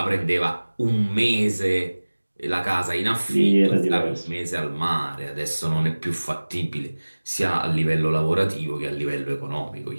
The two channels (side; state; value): both; inverted; correlation -1.00